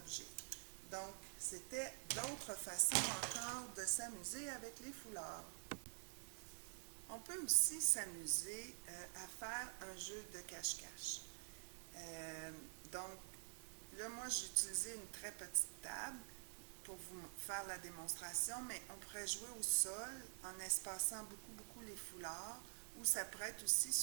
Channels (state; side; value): silent; left; digital silence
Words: Donc, c'était d'autres façons encore de s'amuser avec les foulards. On peut aussi s'amuser à faire un jeu de cache-cache. Donc, là, moi, j'ai utilisé une très petite table pour vous faire la démonstration, mais on pourrait jouer au sol en espaçant beaucoup les foulards, ou ça pourrait être aussi